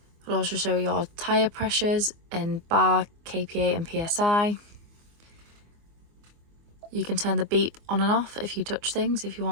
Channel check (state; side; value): late; left; 24 ms